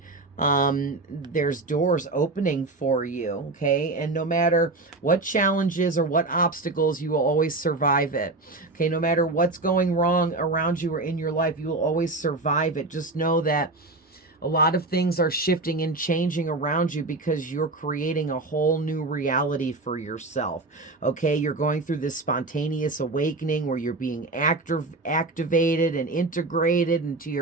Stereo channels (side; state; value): left; quieter; 3.2 dB